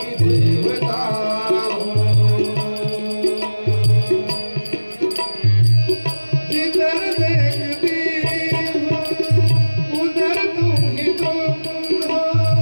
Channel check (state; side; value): inverted; both; correlation -1.00